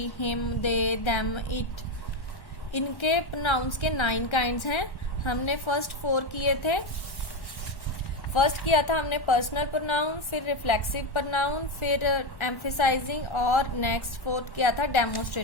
him, they, them, it. इनके प्रोनाउंस के 9 काइंड्स हैं। हमने फर्स्ट 4 किए थे। फर्स्ट किया था हमने पर्सनल प्रोनाउन, फिर रिफ्लेक्सिव प्रोनाउन, फिर एम्फेसाइजिंग और नेक्स्ट 4th किया था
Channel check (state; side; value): late; right; 1.1 ms